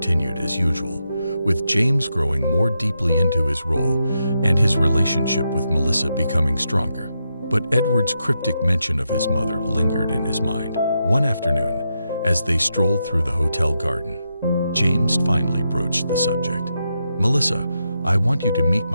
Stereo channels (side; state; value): both; inverted; correlation -0.84